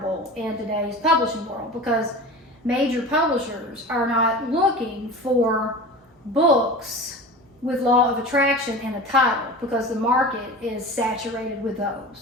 in today's publishing world, because major publishers are not looking for books with law of attraction in a title, because the market is saturated with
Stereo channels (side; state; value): both; normal; correlation 0.34